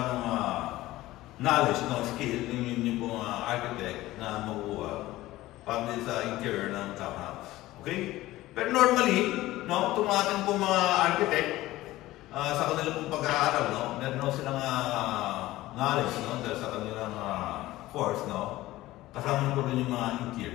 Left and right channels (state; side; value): quieter; right; 17.0 dB